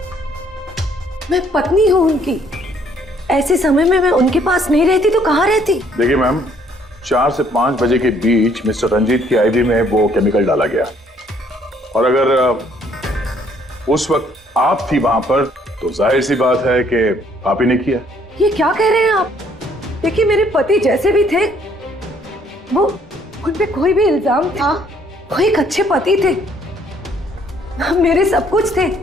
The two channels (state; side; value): normal; both; correlation 0.64